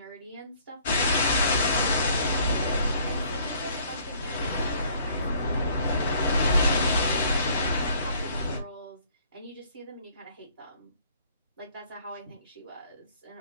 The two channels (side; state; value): both; inverted; correlation -0.59